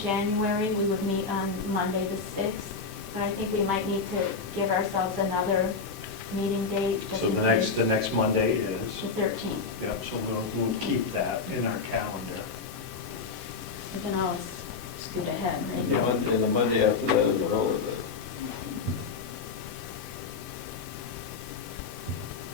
we would meet on Monday the 6th. But I think we might need to give ourselves another meeting date. just So in the case. next Monday is, The 13th. yep, so we'll keep that in our calendar. We can always scoot ahead, And right? the Monday after that is a holiday.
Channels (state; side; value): quieter; right; 4.8 dB